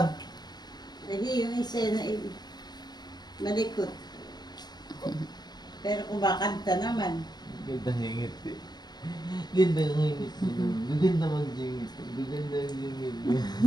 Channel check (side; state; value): right; late; 0.20 ms